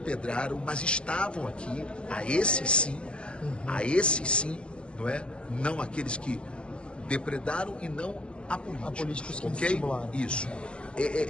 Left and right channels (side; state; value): right; late; 0.052 ms